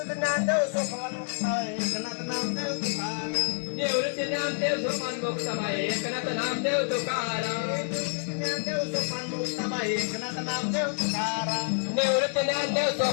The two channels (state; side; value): silent; right; 59 dB below the other